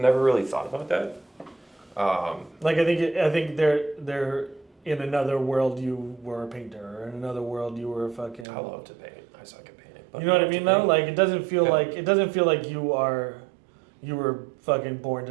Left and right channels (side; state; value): left; drops out; at 8.5 s